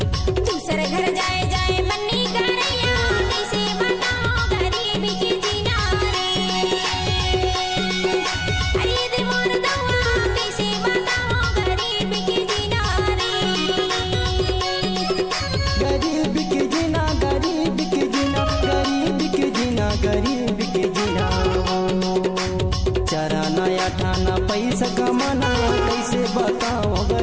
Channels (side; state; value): both; identical; correlation 1.00